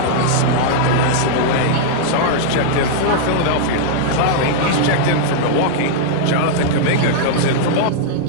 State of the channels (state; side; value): different; both; correlation -0.01